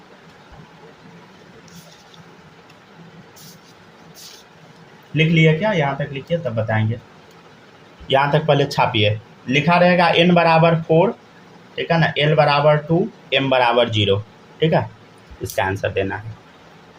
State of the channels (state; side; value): identical; both; correlation 1.00